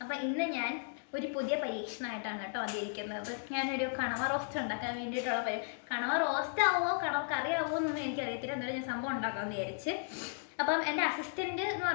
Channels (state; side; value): silent; right; digital silence